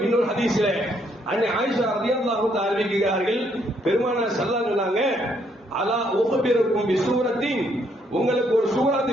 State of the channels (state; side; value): normal; both; correlation 0.71